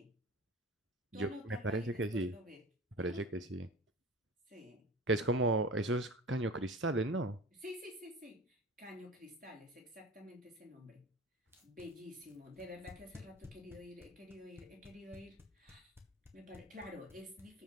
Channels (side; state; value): both; normal; correlation 0.35